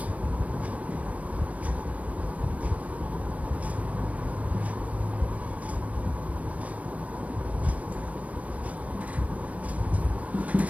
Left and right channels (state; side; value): late; left; 0.069 ms